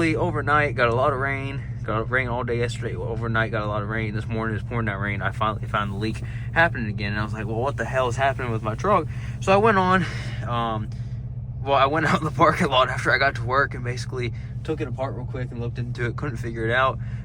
overnight, got a lot of rain. Got rain all day yesterday. Overnight, got a lot of rain. This morning, it's pouring that rain. I finally found the leak happening again. And I was like, well, what the hell is happening with my truck? So I went on. I went out in the parking lot after I got to work and basically took it apart real quick and looked into it. Couldn't figure it out.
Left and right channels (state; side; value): identical; both; correlation 1.00